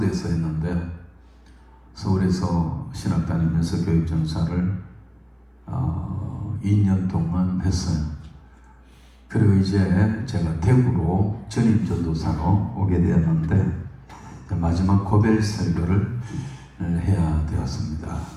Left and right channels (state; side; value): identical; both; correlation 1.00